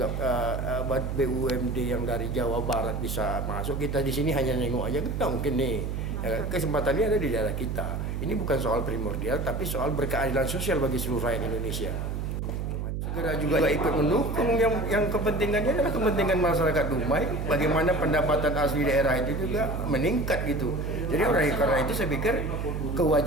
BUMD yang dari Jawa Barat bisa masuk, kita di sini hanya nengok aja, nggak mungkin nih. Kesempatannya ada di daerah kita. Ini bukan soal primordial, tapi soal berkeadilan sosial bagi seluruh rakyat Indonesia. Segera juga ikut mendukung yang kepentingannya adalah kepentingan masyarakat Dumai, bagaimana pendapatan asli daerah itu juga meningkat gitu. Jadi oleh karena itu saya pikir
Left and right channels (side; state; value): right; noise; hum, 3 dB below the sound